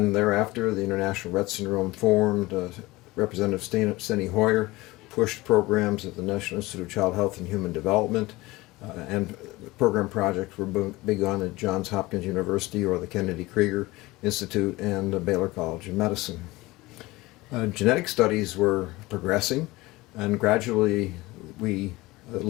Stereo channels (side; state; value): right; quieter; 20.4 dB